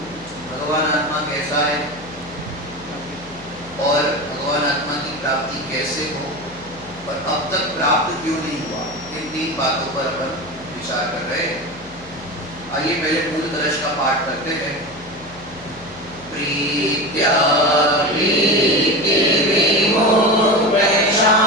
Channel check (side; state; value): left; noise; hum, 22 dB below the sound